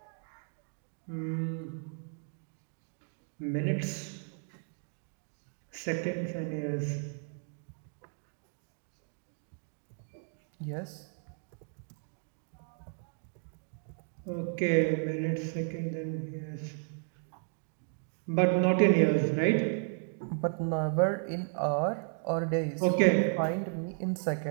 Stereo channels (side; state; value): left; silent; 55 dB below the other